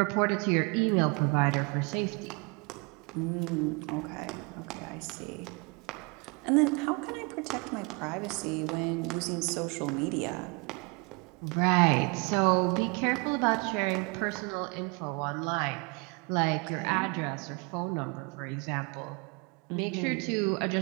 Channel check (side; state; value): left; quieter; 30.4 dB